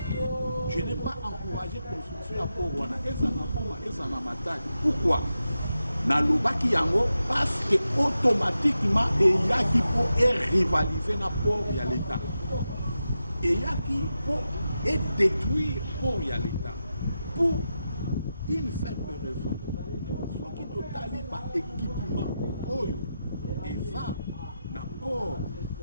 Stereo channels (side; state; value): both; inverted; correlation -0.89